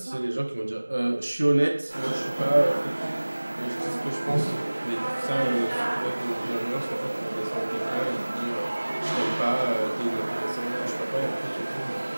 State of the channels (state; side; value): inverted; both; correlation -1.00